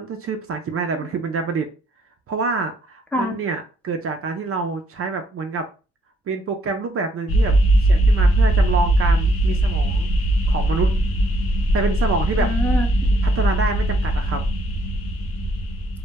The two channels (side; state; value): both; normal; correlation 0.69